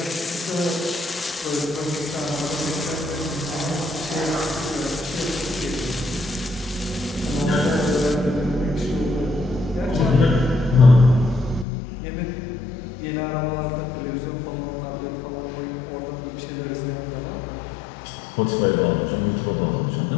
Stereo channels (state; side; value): drops out; right; at 11.7 s